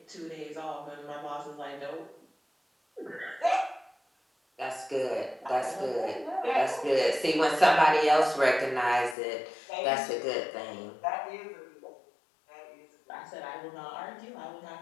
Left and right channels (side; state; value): right; drops out; at 9.2 s